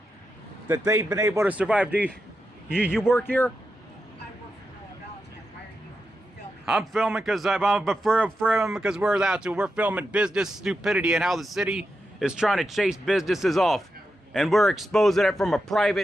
that they've been able to survive. Do you work here? I work for Downtown. Why are you filming? I'm filming because because we're allowed to. We're filming business stupidity and how the city is trying to chase businesses off. And we're exposing it from a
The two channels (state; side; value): normal; both; correlation 0.88